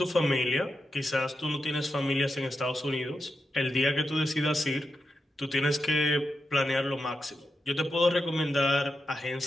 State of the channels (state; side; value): normal; both; correlation 0.88